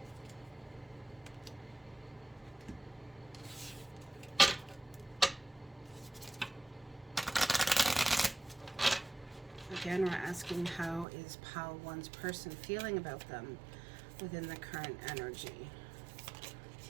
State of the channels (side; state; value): left; drops out; at 11.1 s